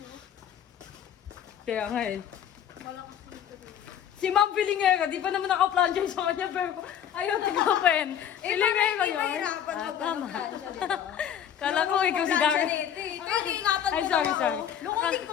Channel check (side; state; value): right; quieter; 9.5 dB